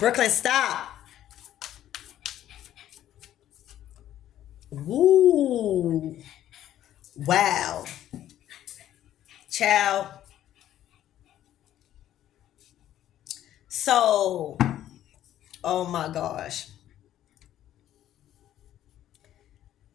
stop. Woo. Wow. Child. So, oh my gosh.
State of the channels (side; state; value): right; quieter; 12.1 dB